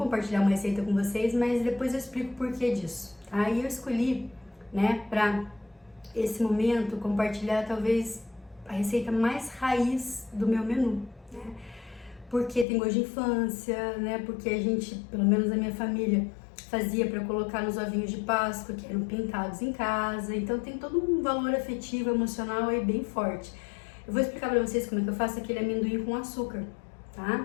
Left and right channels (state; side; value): drops out; right; at 12.7 s